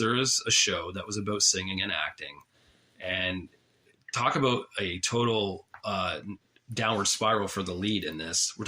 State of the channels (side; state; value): both; identical; correlation 1.00